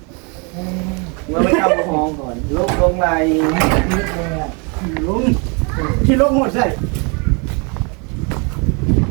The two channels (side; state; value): left; quieter; 33.0 dB